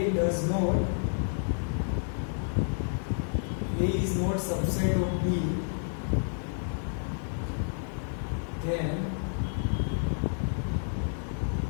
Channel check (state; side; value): silent; right; digital silence